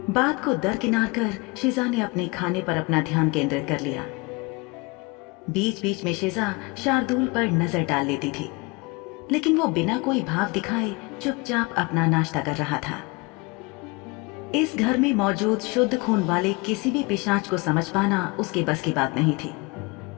बात को दरकिनार कर शिजा ने अपने खाने पर अपना ध्यान केंद्रित कर लिया। बीच बीच में शिजा शार्दुल पर नजर डाल लेती थी, लेकिन वो बिना कोई भाव दिखाए चुपचाप अपना नाश्ता कर रहा था। इस घर में मौजूद शुद्ध खून वाले किसी भी पिशाच को समझ पाना उसके बस की बात नहीं थी।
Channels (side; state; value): right; quieter; 27.0 dB